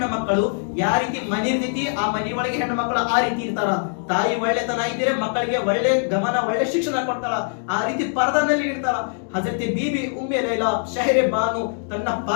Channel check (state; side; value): silent; right; digital silence